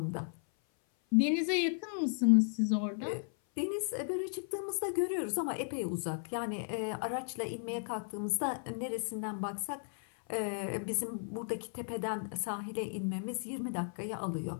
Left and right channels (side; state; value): right; silent; 54 dB below the other